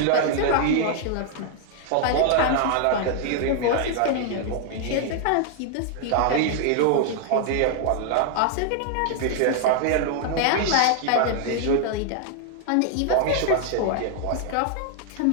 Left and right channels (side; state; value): both; different; correlation 0.00